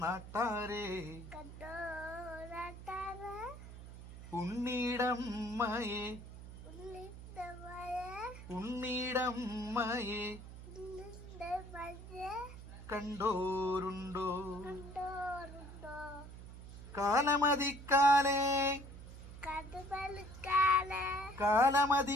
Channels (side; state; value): right; noise; hum, 13 dB below the sound